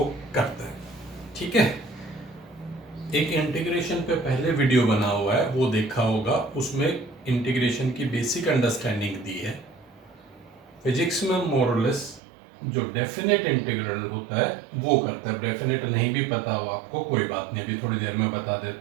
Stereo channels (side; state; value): left; drops out; at 12.2 s